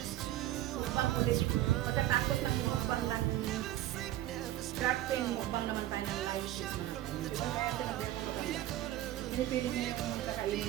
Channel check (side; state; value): left; quieter; 14.2 dB